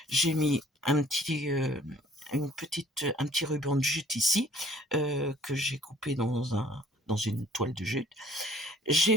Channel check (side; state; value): both; normal; correlation 0.56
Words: J'ai mis un petit ruban de jute ici, que j'ai coupé dans une toile de jute. J'ai